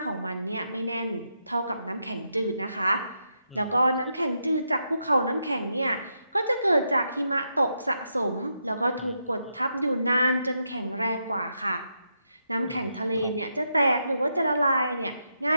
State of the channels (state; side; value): inverted; both; correlation -0.82